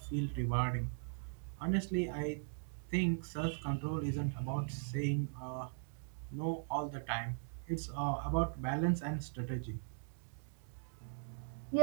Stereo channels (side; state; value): left; silent; digital silence